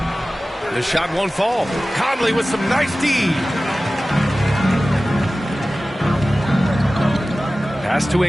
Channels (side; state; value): both; normal; correlation 0.96